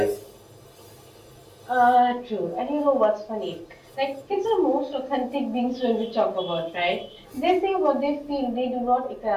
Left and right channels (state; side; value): identical; both; correlation 1.00